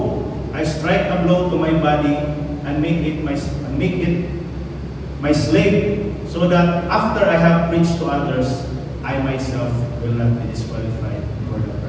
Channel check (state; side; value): identical; both; correlation 1.00